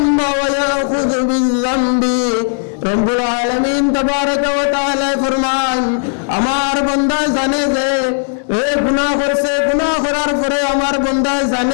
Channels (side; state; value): right; silent; 64 dB below the other